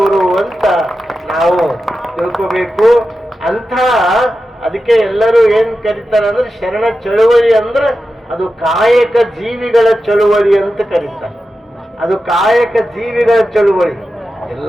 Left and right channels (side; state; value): both; normal; correlation 0.92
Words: ಅಂತ ನಾವು ತಿಳ್ಕೋಬೇಕು. ಅಂಥ ಅದಕ್ಕೆ ಎಲ್ಲರೂ ಏನ್ ಕರೀತಾರೆ ಅಂದ್ರೆ ಶರಣ ಚಳುವಳಿ ಅಂದ್ರೆ ಅದು ಕಾಯಕ ಜೀವಿಗಳ ಚಳುವಳಿ ಅಂತ ಕರೀತಾರೆ. ಅದು ಕಾಯಕ ಜೀವಿಗಳ ಚಳುವಳಿ.